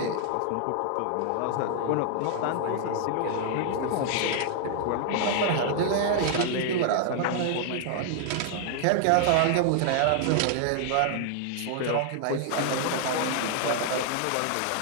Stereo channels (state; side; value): different; both; correlation 0.00